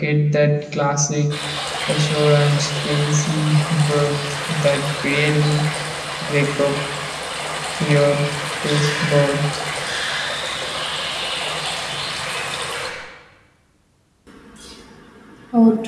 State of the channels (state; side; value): identical; both; correlation 1.00